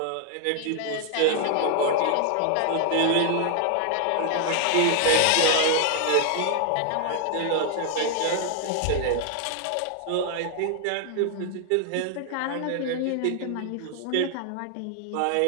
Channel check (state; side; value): different; both; correlation 0.00